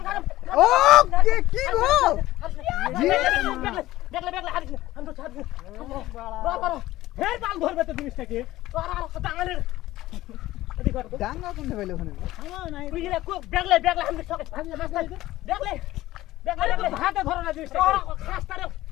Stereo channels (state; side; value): quieter; right; 16.2 dB